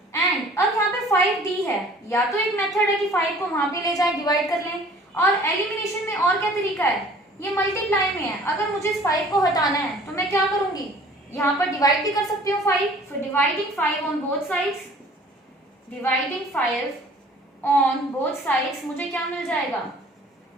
एंड अब यहाँ पे 5d है, या तो एक मेथड है कि 5 को वहां पे ले जाए डिवाइड कर लें, और एलिमिनेशन में और क्या तरीका है, ये मल्टीप्लाई में है, अगर मुझे इस 5 को हटाना है तो मैं क्या करूंगी यहाँ पर डिवाइड भी कर सकती हूँ 5, so dividing 5 on both sides, dividing 5 on both sides मुझे क्या मिल जाएगा,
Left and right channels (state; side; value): normal; both; correlation 0.51